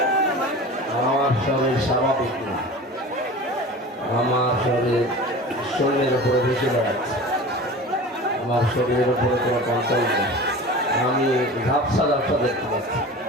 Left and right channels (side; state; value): both; normal; correlation 0.36